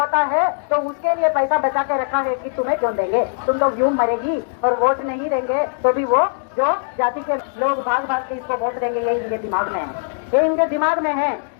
है, तो उसके लिए पैसा बचा के रखा है कि तुम्हें क्यों देंगे, तुम लोग यूं मरेगी और वोट नहीं देंगे तो भी वो जो जाति के लोग भाग भाग के इसको वोट देंगे, यही इनके दिमाग में है, ये इनके दिमाग में है।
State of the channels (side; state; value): right; silent; digital silence